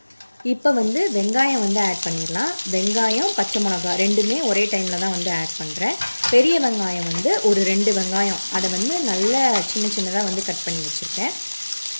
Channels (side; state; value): both; inverted; correlation -1.00